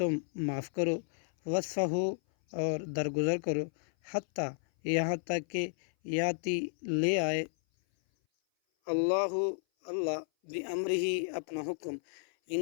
معاف کرو وصفحو اور درگزر کرو حتیٰ یہاں تک کہ یاتی لے آئے اللہ بامرہ اپنا حکم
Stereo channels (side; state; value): right; silent; 56 dB below the other